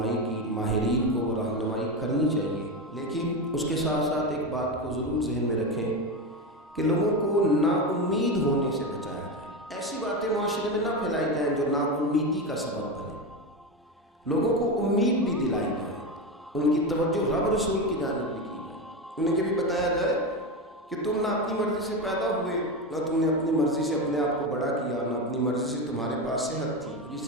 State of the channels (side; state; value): both; normal; correlation 0.17